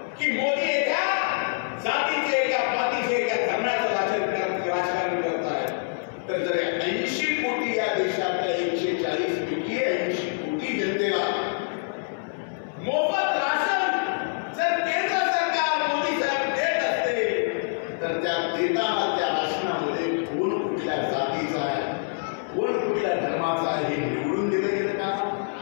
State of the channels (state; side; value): silent; right; 61 dB below the other